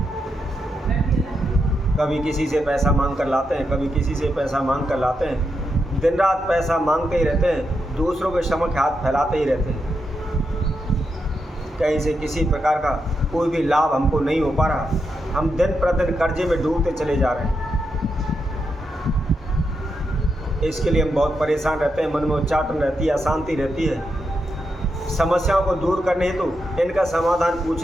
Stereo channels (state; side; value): normal; both; correlation 0.84